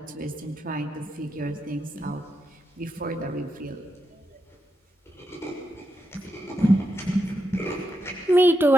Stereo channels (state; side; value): normal; both; correlation 0.85